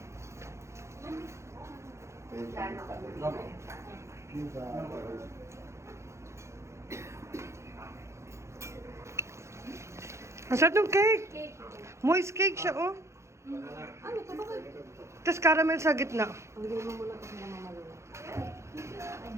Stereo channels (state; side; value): late; left; 0.14 ms